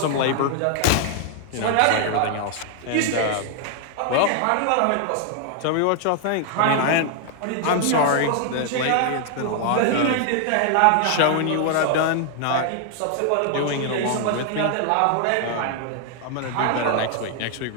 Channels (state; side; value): different; both; correlation 0.00